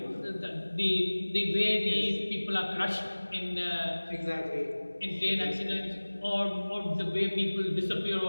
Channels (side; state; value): both; inverted; correlation -1.00